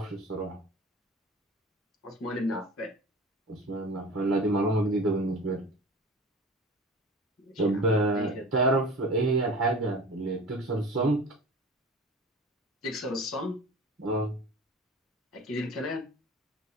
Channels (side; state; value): both; normal; correlation 0.38